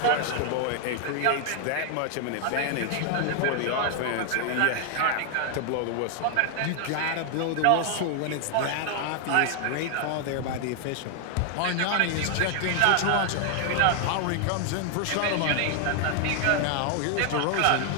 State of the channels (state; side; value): different; both; correlation 0.00